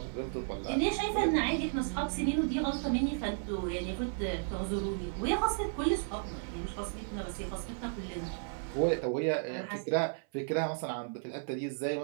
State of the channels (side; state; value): left; silent; 55 dB below the other